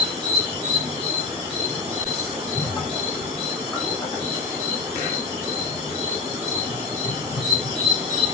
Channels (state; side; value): quieter; right; 4.2 dB